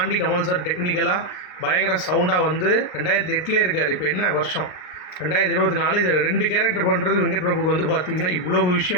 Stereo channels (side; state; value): right; late; 38 ms